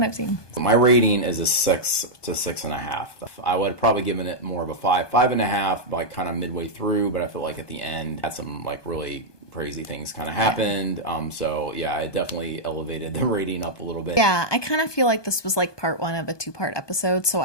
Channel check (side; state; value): right; late; 1.2 ms